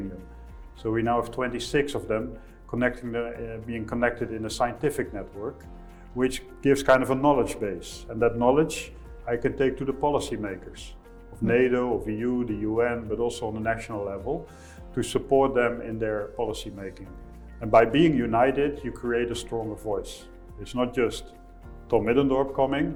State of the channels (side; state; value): both; identical; correlation 1.00